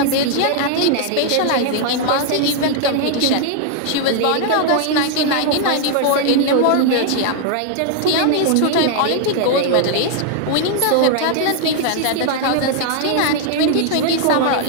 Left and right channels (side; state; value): both; different; correlation 0.00